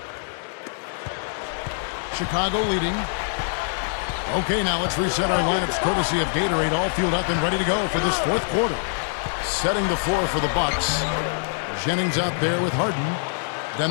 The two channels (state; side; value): silent; right; 57 dB below the other